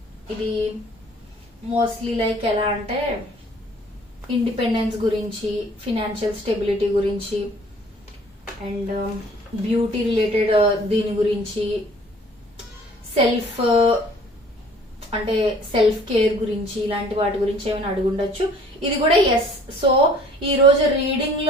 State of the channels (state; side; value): normal; both; correlation 0.53